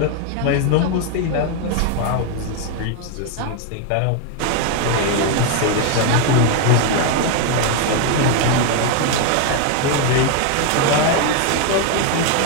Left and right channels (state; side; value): different; both; correlation 0.01